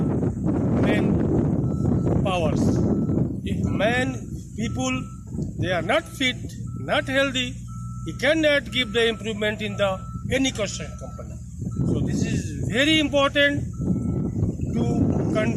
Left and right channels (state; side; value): identical; both; correlation 1.00